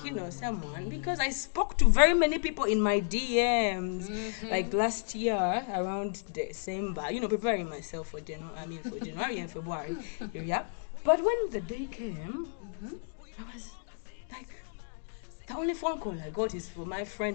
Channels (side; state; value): right; silent; digital silence